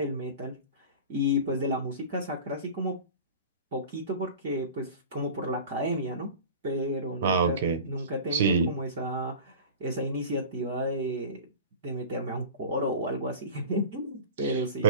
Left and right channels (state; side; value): inverted; both; correlation -0.35